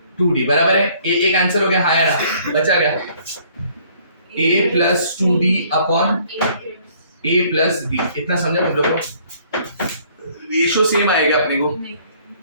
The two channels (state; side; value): inverted; both; correlation -0.60